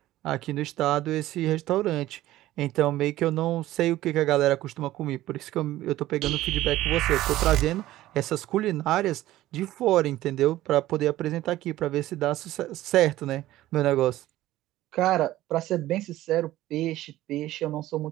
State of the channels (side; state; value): left; quieter; 15.3 dB